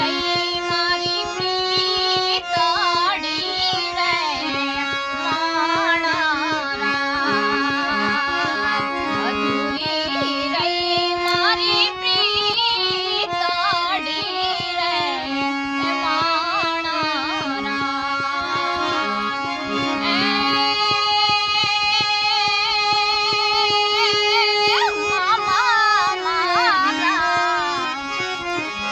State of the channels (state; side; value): identical; both; correlation 1.00